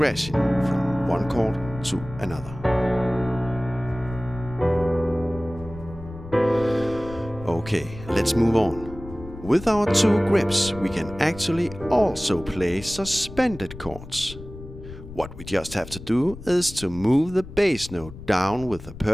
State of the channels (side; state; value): left; noise; rumble, 14 dB below the sound